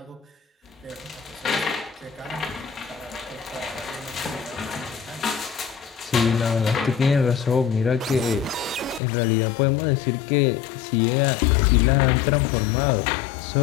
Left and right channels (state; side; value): drops out; right; at 9.0 s